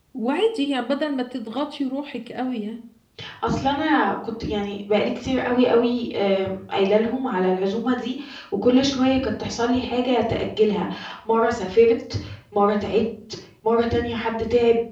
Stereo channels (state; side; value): identical; both; correlation 1.00